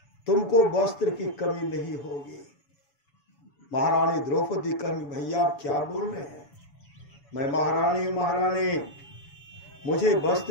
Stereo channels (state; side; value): late; right; 7.1 ms